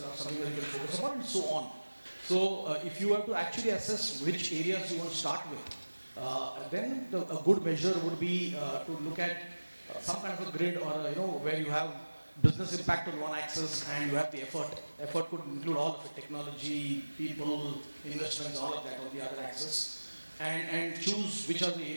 are something that you can focus upon and so on. So if you have to actually assess which areas you want to start with, then a good measure would be to look at some kind of a grid or where you have business impact on one axis and you have the effort. Effort could include all of it, technology, people, investments, all of that on the other axis. And choose which are the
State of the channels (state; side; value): inverted; both; correlation -1.00